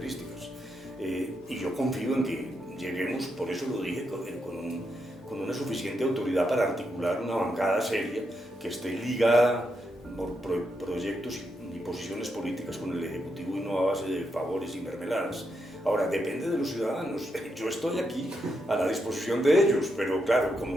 y yo confío en que lleguemos, por eso lo dije, con una suficiente autoridad para articular una bancada seria que esté ligada por proyectos y posiciones políticas con el Ejecutivo, y no a base de favores y mermeladas. Ahora, depende de los ciudadanos. Yo estoy aquí a la disposición de ellos, pero claro, como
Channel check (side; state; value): both; normal; correlation 0.82